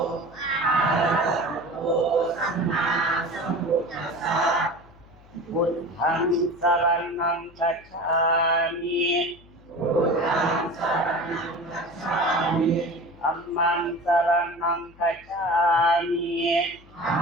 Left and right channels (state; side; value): noise; left; hum, 25 dB below the sound